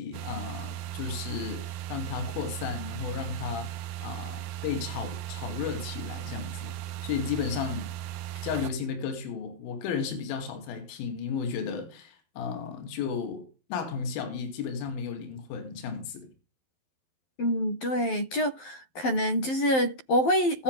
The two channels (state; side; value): late; right; 11 ms